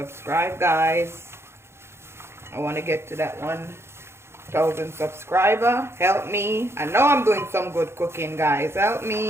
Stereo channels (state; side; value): late; left; 0.12 ms